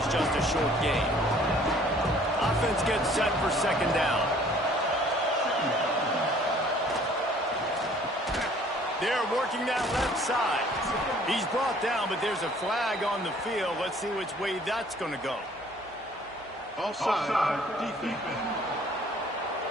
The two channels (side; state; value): both; normal; correlation 0.56